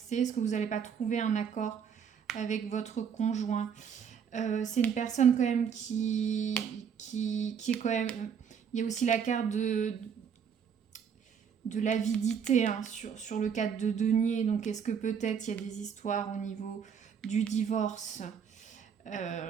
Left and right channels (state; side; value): quieter; left; 7.3 dB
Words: Est-ce que vous n'allez pas trouver un accord avec votre conjoint? C'est une personne quand même qui est quand même... Il y a aussi la carte de l'avidité, hein, sur le cadre de denier. Donc est-ce que peut-être il y a des histoires au niveau du divorce?